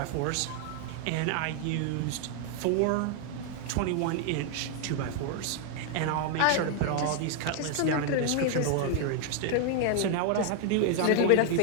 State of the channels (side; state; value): both; different; correlation 0.00